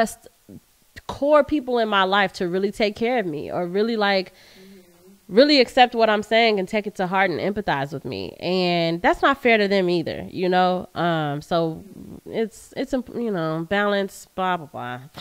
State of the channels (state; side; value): identical; both; correlation 1.00